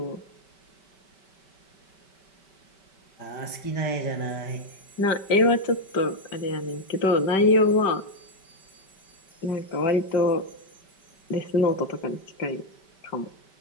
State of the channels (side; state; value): right; late; 5.2 ms